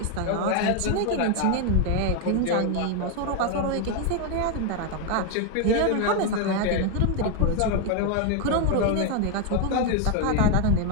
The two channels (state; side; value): different; both; correlation 0.01